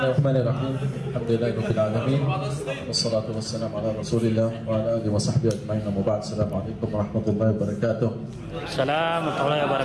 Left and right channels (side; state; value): both; identical; correlation 1.00